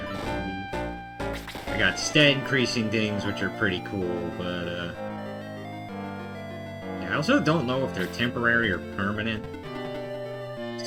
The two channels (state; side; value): identical; both; correlation 1.00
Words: believe. I got stat increasing things, which are pretty cool, but, yeah, I also don't know if they're temporary or permanent.